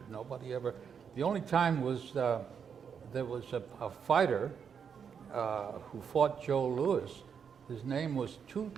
Nobody ever. The only time was there was a fighter who fought Joe Louis. His name was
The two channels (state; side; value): quieter; left; 7.0 dB